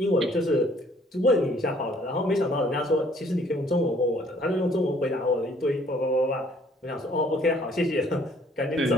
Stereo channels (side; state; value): both; normal; correlation 0.60